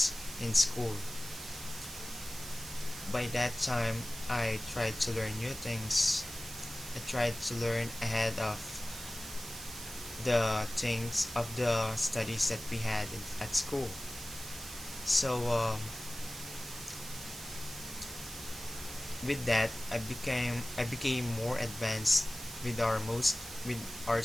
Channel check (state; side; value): noise; right; hiss, 11 dB below the sound